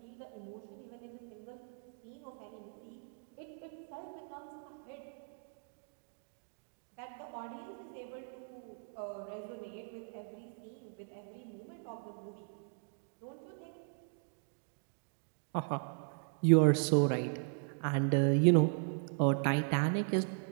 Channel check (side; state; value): left; silent; 53 dB below the other